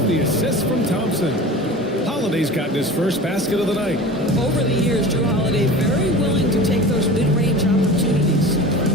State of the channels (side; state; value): both; normal; correlation 0.36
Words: the assist from Thompson. Holiday's gotten his first basket of the night. Over the years, Drew Holiday very willing to take those mid-range opportunities.